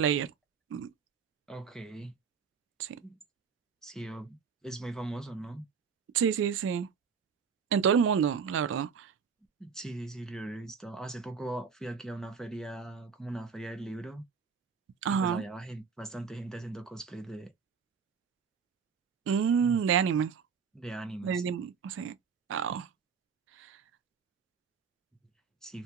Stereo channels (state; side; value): quieter; left; 6.3 dB